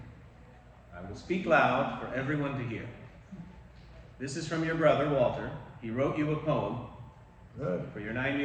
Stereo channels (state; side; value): identical; both; correlation 1.00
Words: I will speak loud for everyone to hear. This is from your brother, Walter. He wrote you a poem Good. for your